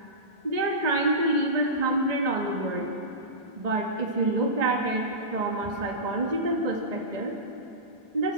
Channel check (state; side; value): normal; both; correlation -0.20